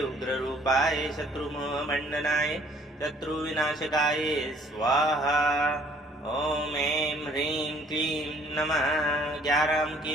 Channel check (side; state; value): both; normal; correlation 0.58